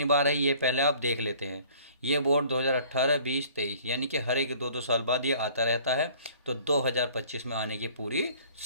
बार है, ये पहले आप देख लेते हैं। ये बोर्ड 2018, 20, 23 यानी कि हर एक 2-2 साल बाद ये आता रहता है। तो 2025 में आने की पूरी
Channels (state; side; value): inverted; both; correlation -0.52